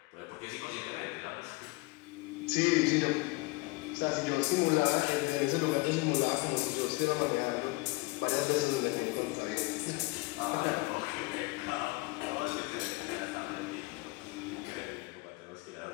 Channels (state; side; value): quieter; right; 24.4 dB